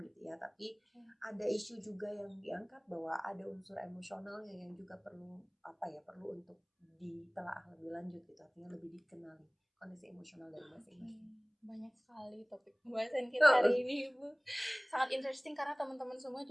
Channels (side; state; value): both; identical; correlation 1.00